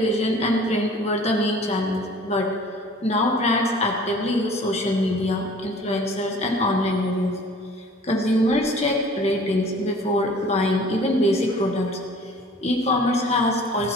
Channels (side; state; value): both; normal; correlation 0.49